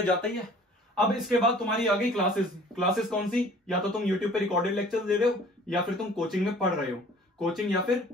जाता ही है। अब इसके बाद तुम्हारी आ गई क्लासेस। क्लासेस कौन सी? या तो तुम यूट्यूब पे रिकॉर्डेड लेक्चर दे रहे हो, या फिर तुम कोचिंग में पढ़ रहे हो। कोचिंग या फिर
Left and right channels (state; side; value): normal; both; correlation 0.50